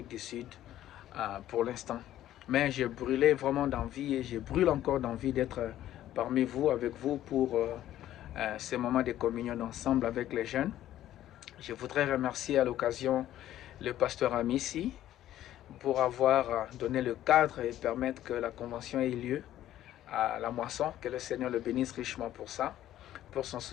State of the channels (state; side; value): quieter; right; 12.8 dB